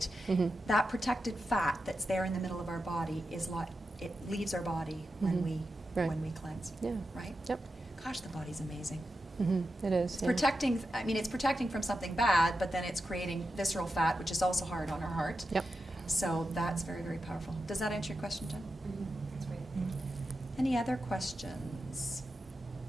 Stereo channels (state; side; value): normal; both; correlation 0.89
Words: Mhm. That protected fat that's there in the middle of our body it leaves our body when Mhm. we Right. when we cleanse. Yeah. Right? Yep. Gosh, the body's amazing. It is. It's protecting. I mean, it's protecting from something bad, but then it's creating visceral fat, which is also hard on our heart. Yep. So that's very, very powerful. Does that answer your question, Jen? That's great. Any other questions?